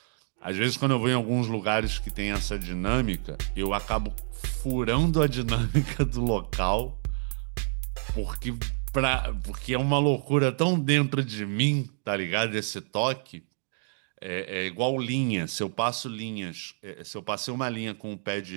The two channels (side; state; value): left; silent; digital silence